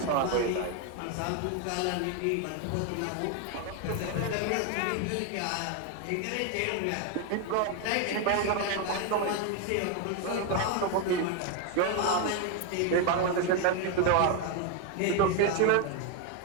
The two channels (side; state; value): both; different; correlation 0.01